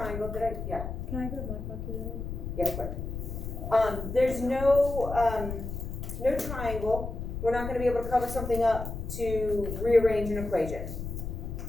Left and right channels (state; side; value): noise; left; rumble, 6 dB below the sound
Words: yeah, Can I grab my calculator? yeah, quick. There's no triangle. We're not gonna be able to cover something up to rearrange an equation.